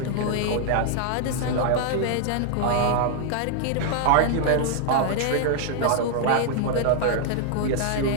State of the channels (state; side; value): different; both; correlation 0.00